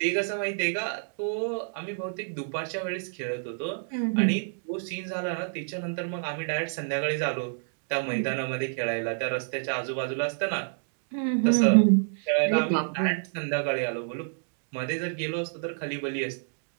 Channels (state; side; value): silent; left; digital silence